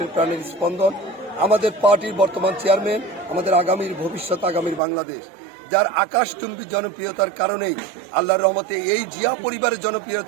প্রাণের স্পন্দন, আমাদের পার্টির বর্তমান চেয়ারম্যান, আমাদের আগামীর ভবিষ্যৎ, আগামীর বাংলাদেশ, যার আকাশচুম্বী জনপ্রিয়তার কারণেই, আল্লাহর রহমতে এই জিয়া পরিবারের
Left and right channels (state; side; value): drops out; left; at 4.8 s